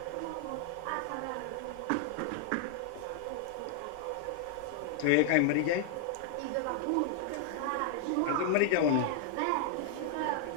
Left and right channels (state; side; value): different; both; correlation 0.00